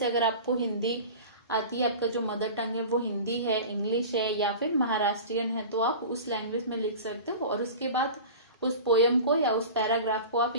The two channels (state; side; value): inverted; both; correlation -0.35